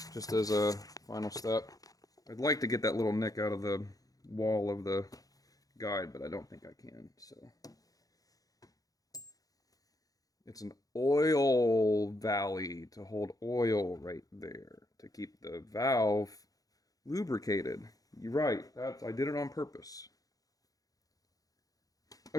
just as a final step. I'd like to get that little nick out of the wall of the guide, but I don't think I can, so. It's an oil valley to hold oil right there to keep the valve lubricated. You're right, I did it on purpose.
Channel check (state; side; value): late; right; 0.17 ms